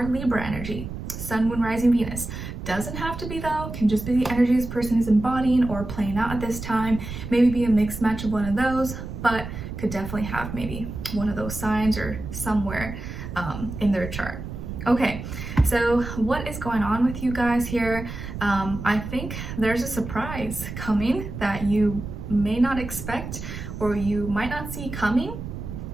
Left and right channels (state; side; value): noise; right; rumble, 8 dB below the sound